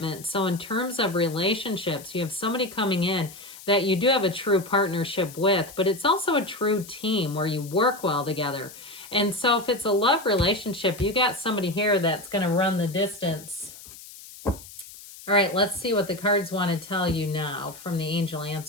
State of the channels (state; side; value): noise; left; hiss, 17 dB below the sound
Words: So in terms of relationships, you have somebody coming in that you do have a true partnership with, but it's also a true team where you work well together. And so if it's a love relationship, you got somebody here that's going to run the distance. All right, let's see what the cards want to tell you now from the angel